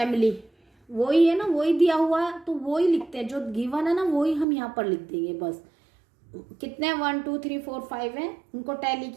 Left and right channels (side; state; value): left; drops out; at 4.5 s